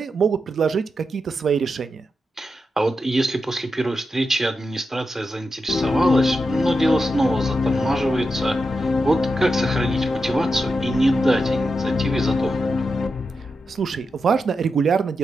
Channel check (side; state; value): both; normal; correlation 0.88